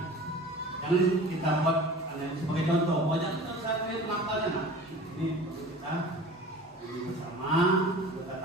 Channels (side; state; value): both; normal; correlation 0.40